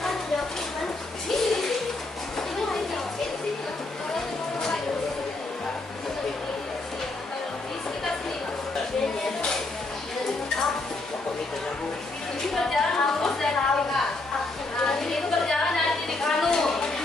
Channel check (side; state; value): right; quieter; 3.1 dB